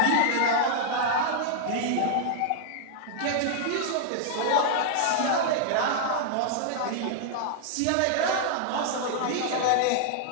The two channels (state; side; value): different; both; correlation -0.01